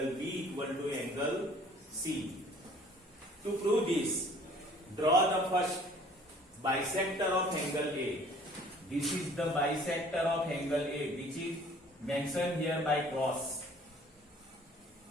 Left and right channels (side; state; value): both; normal; correlation 0.53